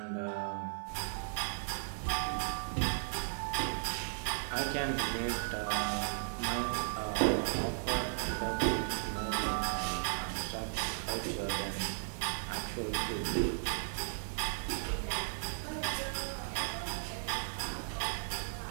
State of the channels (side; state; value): left; silent; 54 dB below the other